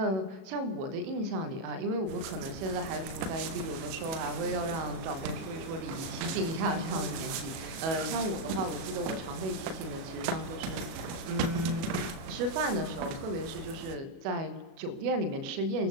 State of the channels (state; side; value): late; left; 37 ms